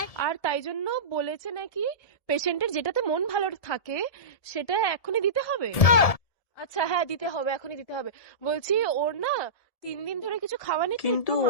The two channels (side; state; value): right; late; 1.7 ms